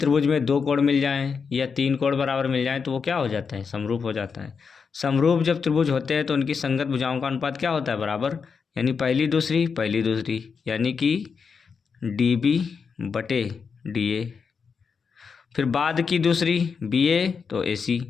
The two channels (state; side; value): quieter; right; 5.8 dB